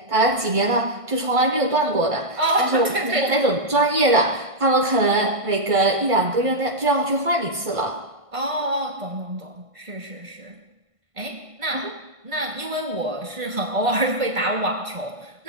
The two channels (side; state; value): left; late; 1.5 ms